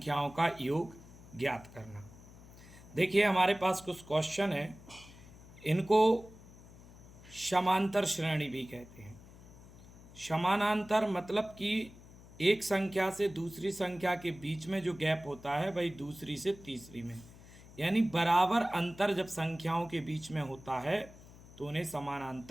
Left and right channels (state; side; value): noise; left; hum, 20 dB below the sound